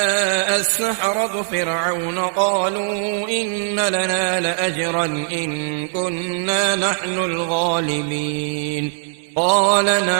السحرة فرعون قالوا إن لنا لأجرا إن كنا نحن الغالبين قال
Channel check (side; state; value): left; silent; digital silence